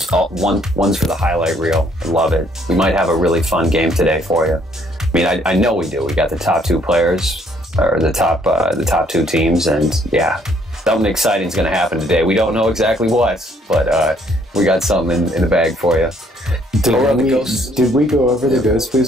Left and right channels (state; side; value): normal; both; correlation 0.65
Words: all one's for the highlight reel. I love it. We might have a really fun game today for you. I mean, I know we do. We got the top two players, or the top two teams, and yeah, something exciting is going to happen today. We don't know exactly what, but we got something in the bag for you. Did we go over the